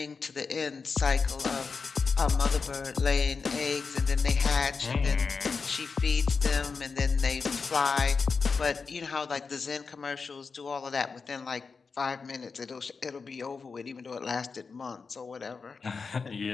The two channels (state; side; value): quieter; right; 4.9 dB